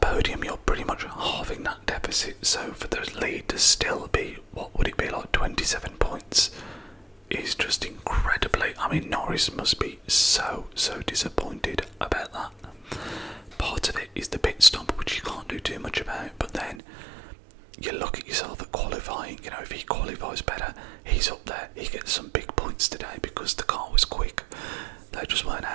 you're pretty much halving that deficit, so for the lead to still be, what would it be, like 27 points, is just incredibly... Norris must be so disappointed about that. Part of it is the pit stop, which you can't do too much about, but then you look at yourself at qualifying, if he qualifies better, he's up there, he gets some big points today because the car was quick. They just weren't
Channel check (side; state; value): left; drops out; at 16.8 s